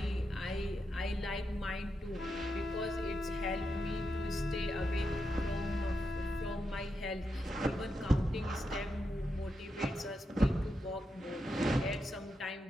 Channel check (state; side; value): normal; both; correlation 0.85